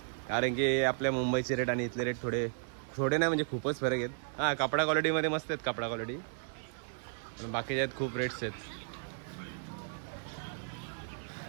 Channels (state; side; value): silent; left; digital silence